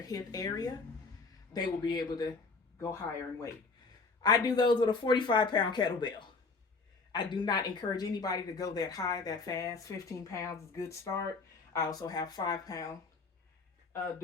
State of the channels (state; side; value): quieter; right; 4.2 dB